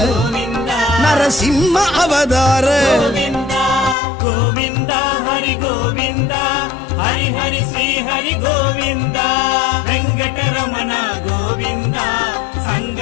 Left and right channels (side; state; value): right; drops out; at 4.0 s